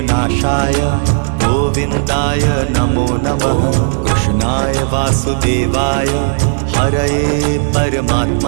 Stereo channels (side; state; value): left; silent; digital silence